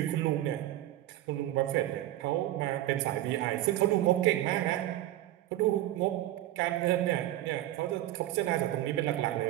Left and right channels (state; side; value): quieter; left; 14.4 dB